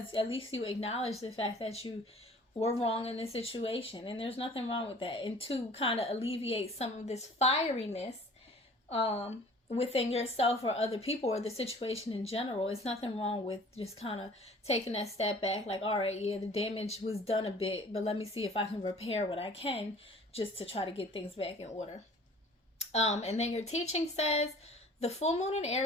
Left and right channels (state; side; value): normal; both; correlation 0.49